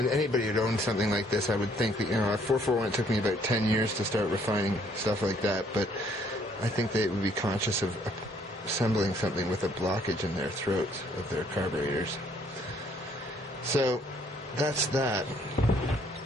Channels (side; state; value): both; normal; correlation 0.64